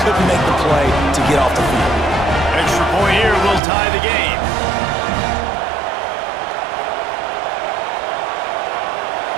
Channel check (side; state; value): left; drops out; at 3.6 s